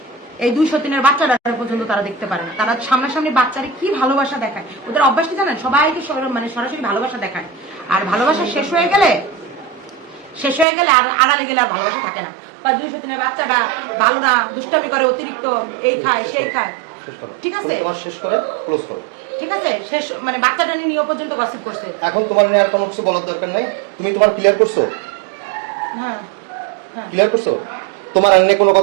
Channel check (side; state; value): left; drops out; at 10.7 s